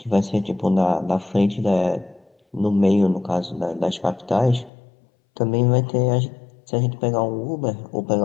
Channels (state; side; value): drops out; right; at 4.7 s